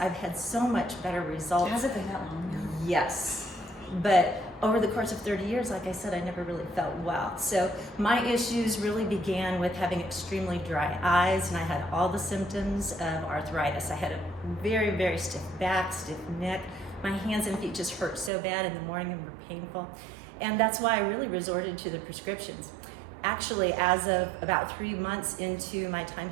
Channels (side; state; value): left; drops out; at 18.3 s